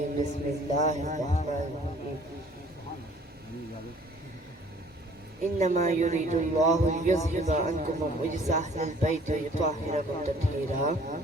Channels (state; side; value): normal; both; correlation 0.55